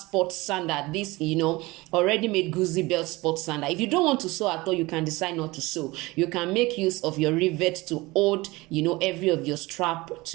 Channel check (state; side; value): quieter; left; 21.6 dB